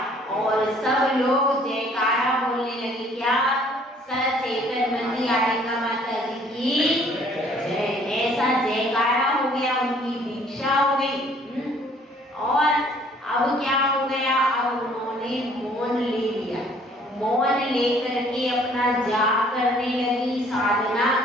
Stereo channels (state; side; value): normal; both; correlation 0.58